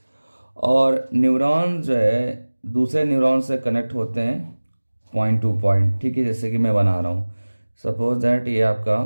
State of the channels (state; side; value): inverted; both; correlation -1.00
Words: और न्यूरॉन जो है दूसरे न्यूरॉन से कनेक्ट होते हैं पॉइंट टू पॉइंट, ठीक है। जैसे कि मैं बना रहा हूं, सपोज दैट ये आपका